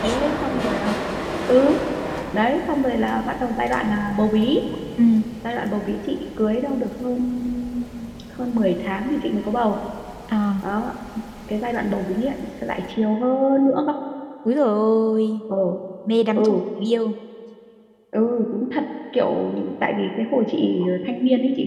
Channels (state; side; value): identical; both; correlation 1.00